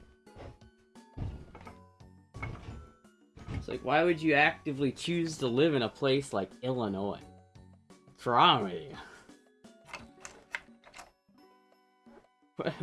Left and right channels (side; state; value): both; identical; correlation 1.00